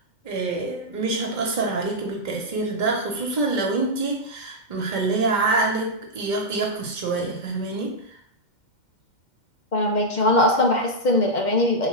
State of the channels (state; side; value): late; right; 2.1 ms